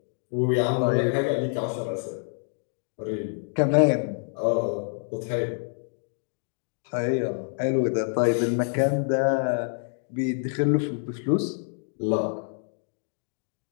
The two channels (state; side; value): silent; right; digital silence